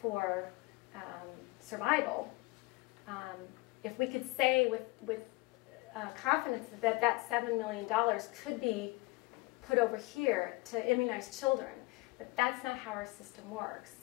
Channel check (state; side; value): quieter; right; 23.8 dB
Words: survival. If we could say with confidence that $7 million could be put over here to immunize children, but that's not how our system works.